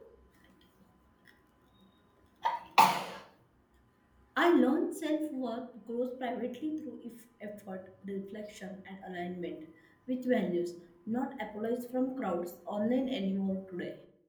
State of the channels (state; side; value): identical; both; correlation 1.00